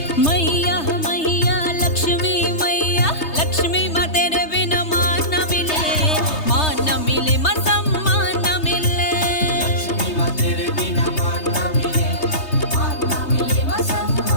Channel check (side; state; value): right; late; 3.3 ms